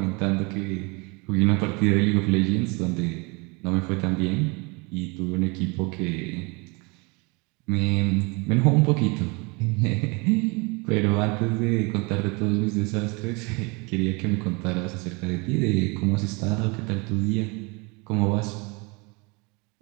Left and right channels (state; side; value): quieter; left; 28.9 dB